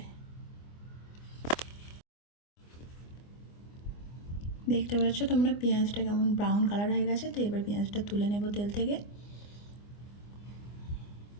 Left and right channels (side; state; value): right; late; 24 ms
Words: দেখতে পাচ্ছ তোমরা পেঁয়াজটা কেমন ব্রাউন কালার হয়ে গেছে। তো এবার পেঁয়াজটা তুলে নেব তেল থেকে।